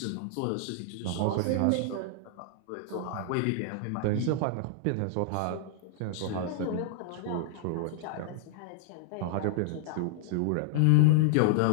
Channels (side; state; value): both; different; correlation 0.00